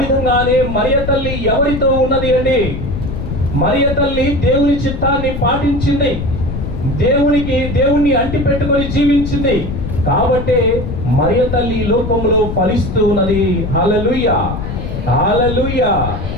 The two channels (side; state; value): left; noise; rumble, 5 dB below the sound